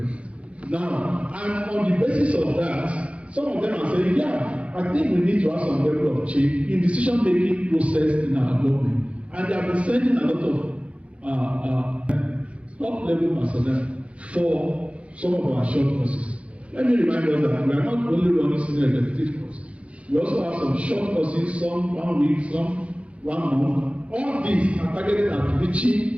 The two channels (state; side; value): late; left; 0.062 ms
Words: Now, and on the basis of that, some of them are saying, yeah, I think we need to have some level of change in decision-making process in our government. And they have been sending a lot of top-level personnel for some of our short courses. Let me remind us that we are not only running senior executive courses. We also have some short courses, some 1 week, some 1 month. All these are targeted at